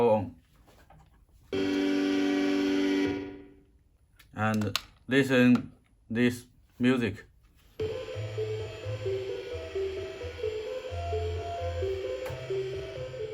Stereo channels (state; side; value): identical; both; correlation 1.00